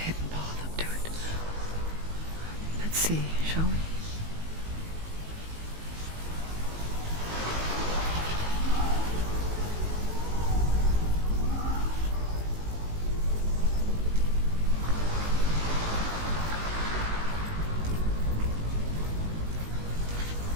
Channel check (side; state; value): left; late; 19 ms